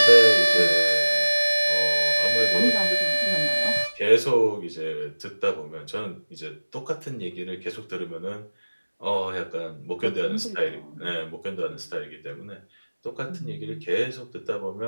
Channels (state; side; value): inverted; both; correlation -1.00